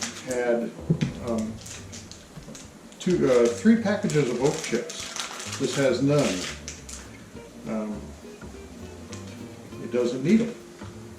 had 3 packages of oak chips. This has none. It doesn't need them.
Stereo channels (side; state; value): both; identical; correlation 1.00